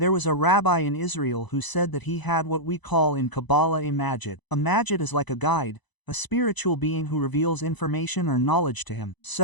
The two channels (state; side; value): late; right; 1.0 ms